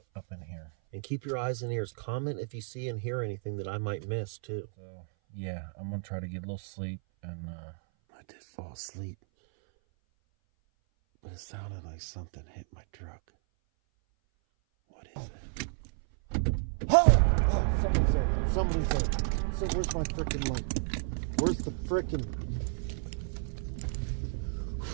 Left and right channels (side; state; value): left; silent; 56 dB below the other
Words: up in here. And keep your eyes and ears. Comment if you see and hear anything that I might miss too. So yeah, I'm gonna try to get a little sleep, and I did fall asleep, but it sounded like something hit my truck. What is it? Oh, somebody's there. Somebody's there. So where's my frickin' light? Where's the frickin'...